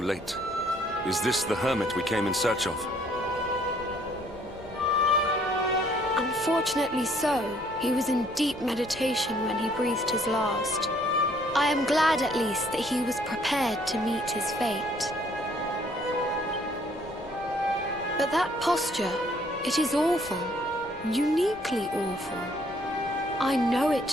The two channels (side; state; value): left; noise; rumble, 23 dB below the sound